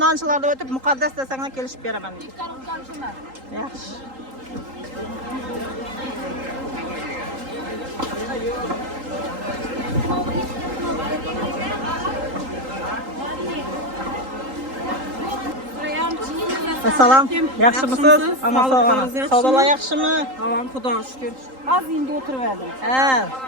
nonchilarda o'tib muqaddas desanglar kelishib beraman. Ikkarim kamshimlar. Yaxshi. Assalom, yaxshimisiz? Amma sog'ana. Savdolar yaxshimi? Tamam, Xudoga shukr. Az endi o'tirib Ha,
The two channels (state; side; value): late; left; 3.8 ms